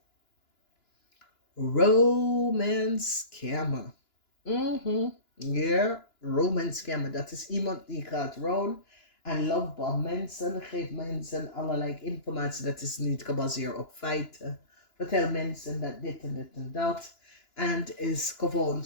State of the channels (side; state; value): right; late; 2.9 ms